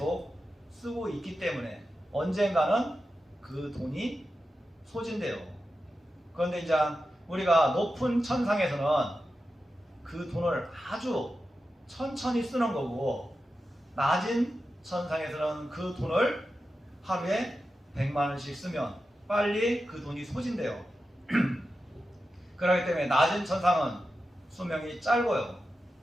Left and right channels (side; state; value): both; normal; correlation 0.91